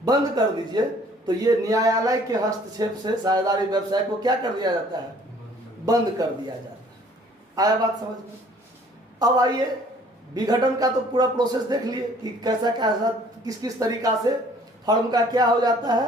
बंद कर दीजिए, तो ये न्यायालय के हस्तक्षेप से साझेदारी व्यवसाय को क्या कर दिया जाता है, बंद कर दिया जाता है। आया बात समझ में? अब आइए विघटन का तो पूरा प्रोसेस देख लिए कि कैसा कैसा किस किस तरीका से फर्म का क्या हो जाता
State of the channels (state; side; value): normal; both; correlation 0.56